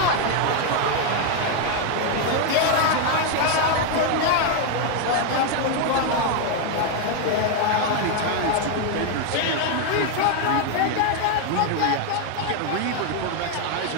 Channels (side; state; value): both; different; correlation 0.01